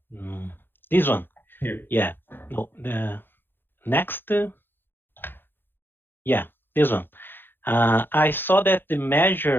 this one? Here. Yeah. No. The next. Yeah, this one. I saw that the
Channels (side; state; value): right; late; 0.10 ms